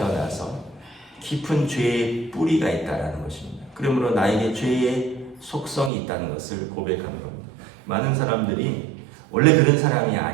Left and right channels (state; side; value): drops out; left; at 5.9 s